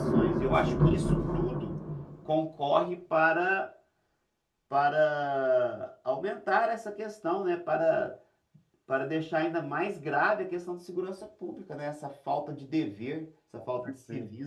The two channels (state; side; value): identical; both; correlation 1.00